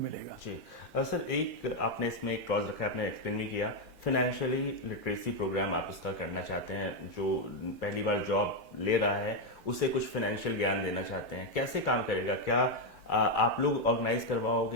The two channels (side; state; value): both; normal; correlation 0.04